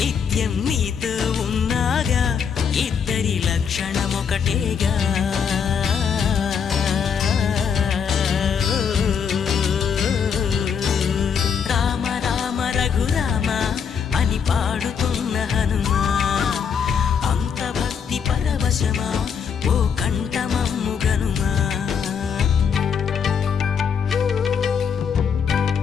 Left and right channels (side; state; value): right; quieter; 6.9 dB